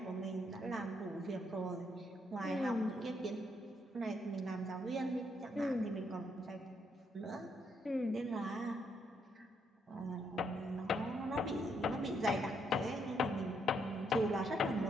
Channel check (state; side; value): normal; both; correlation 0.75